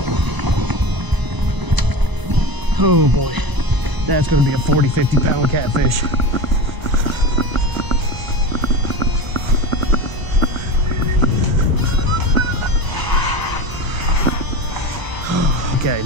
Oh boy, that's gonna be a 40, 50 pound catfish. Okay,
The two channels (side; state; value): left; late; 1.0 ms